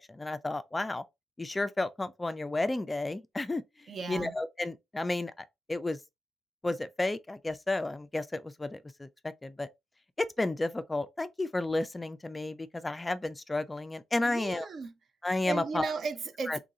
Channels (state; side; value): normal; both; correlation 0.95